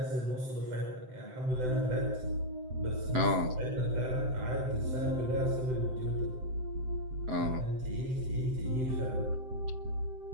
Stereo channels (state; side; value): late; left; 7.8 ms